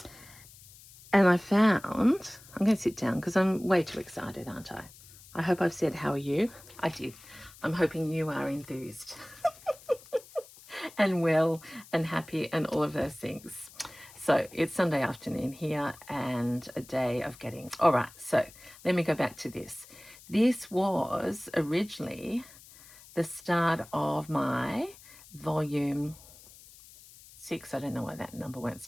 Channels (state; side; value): noise; left; hiss, 21 dB below the sound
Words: I found, I'm going to sit down because I'm way too excited, aren't I? I hope I've said, how are you? I did. I'm hoping you are enthused and well and happy and all of those things. So it's Sunday afternoon here and a day of getting, all right, so let me go back to this. This was originally the start of my volume 6, I don't know why that number won't